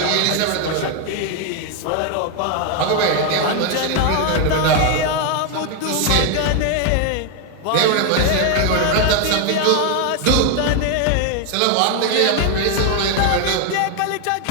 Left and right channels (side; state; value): both; different; correlation 0.01